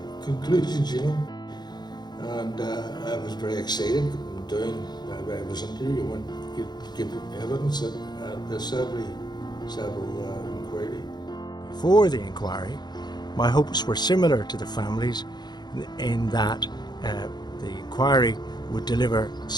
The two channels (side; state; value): right; late; 0.21 ms